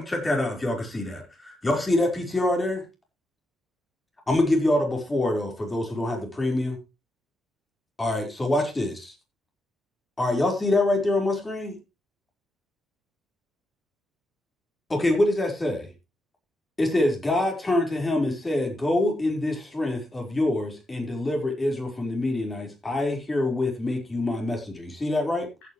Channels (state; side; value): normal; both; correlation 0.84